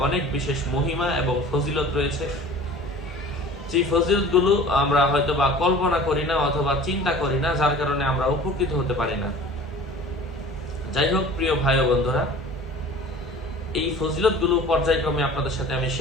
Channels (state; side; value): normal; both; correlation 0.43